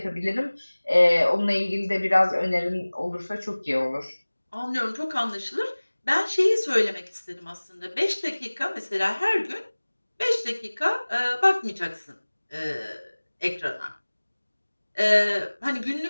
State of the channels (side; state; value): both; inverted; correlation -1.00